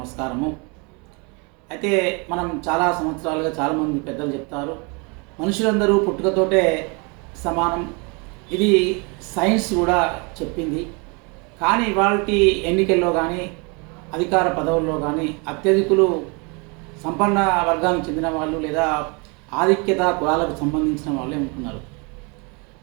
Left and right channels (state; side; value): quieter; left; 31.5 dB